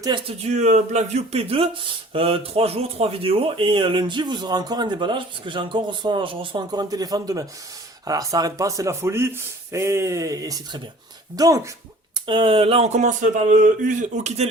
du Blackview P2, 3 jours, 3 vidéos, et lundi vous aurez encore un déballage, parce que je reçois encore un téléphone demain. Alors ça arrête pas, c'est la folie, et c'est très bien. Donc, là, on commence par quitter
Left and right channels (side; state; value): both; normal; correlation 0.49